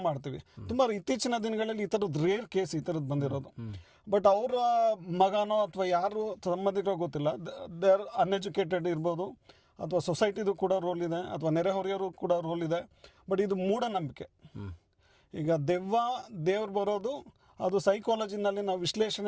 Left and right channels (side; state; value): both; identical; correlation 1.00